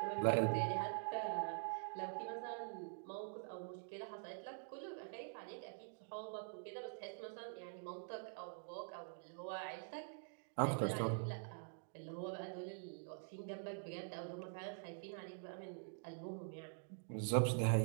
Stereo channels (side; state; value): left; silent; digital silence